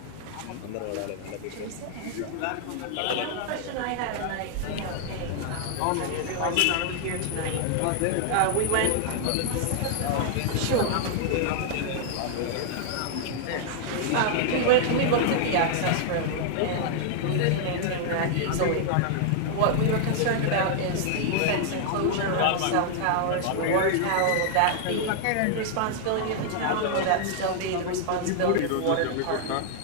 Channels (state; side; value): different; both; correlation -0.01